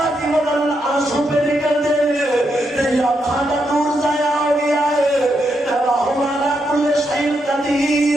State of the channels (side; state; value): both; normal; correlation 0.81